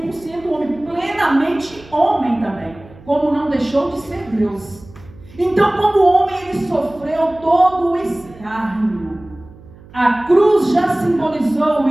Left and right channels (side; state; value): right; noise; hum, 22 dB below the sound